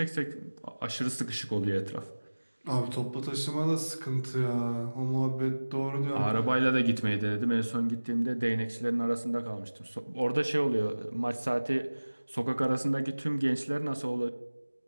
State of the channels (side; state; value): both; inverted; correlation -1.00